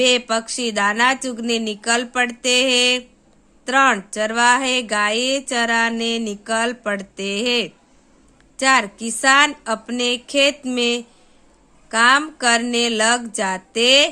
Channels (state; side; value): identical; both; correlation 1.00